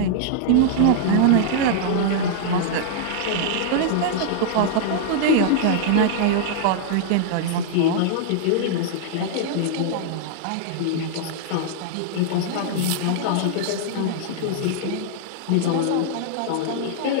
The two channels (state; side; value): different; both; correlation -0.01